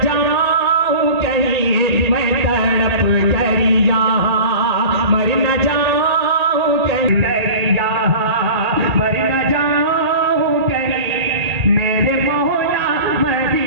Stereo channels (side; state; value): left; late; 1.8 ms